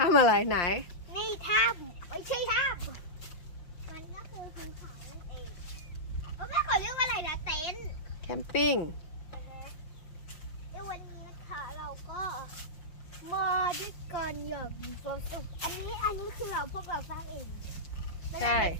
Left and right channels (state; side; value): late; right; 5.7 ms